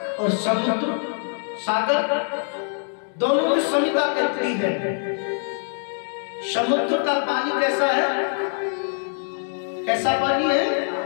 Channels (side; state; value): right; silent; 63 dB below the other